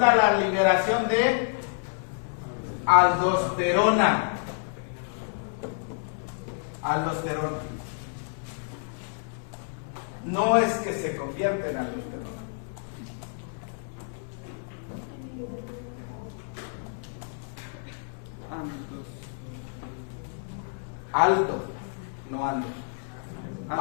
la liberación de aldosterona. Aldosterona. No es que se convierta en aldosterona. Aldo, no Aldo.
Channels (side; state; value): right; silent; 59 dB below the other